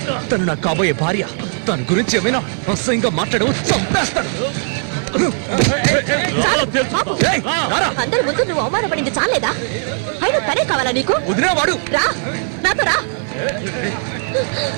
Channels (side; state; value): left; silent; 61 dB below the other